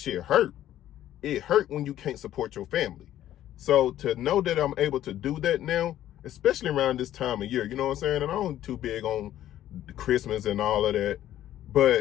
hurt. It hurt when you can't support your family. So to know that I'm able to do that now, especially around this time of year, you know what I'm saying? And I'm too big on Christmas and all of that,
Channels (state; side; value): quieter; right; 12.4 dB